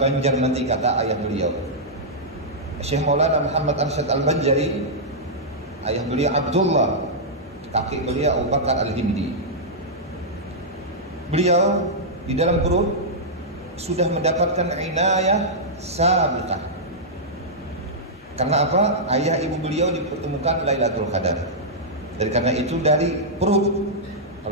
nanti, kata ayah beliau. Syekh Maulana Muhammad Arsyad Al-Banjari, ayah beliau Abdullah, kakek beliau Abu Bakar Al-Hindi. Beliau di dalam perut sudah mendapatkan inayah sabiqah. Karena apa? Ayah ibu beliau dipertemukan Lailatul Qadar. Dan karena itu dari perut,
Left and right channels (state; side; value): normal; both; correlation -0.09